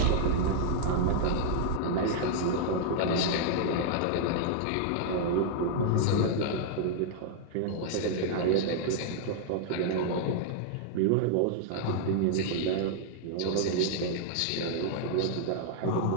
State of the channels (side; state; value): both; different; correlation -0.01